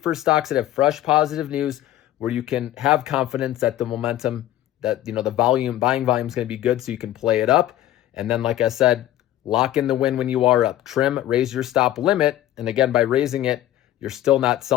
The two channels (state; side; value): quieter; right; 13.4 dB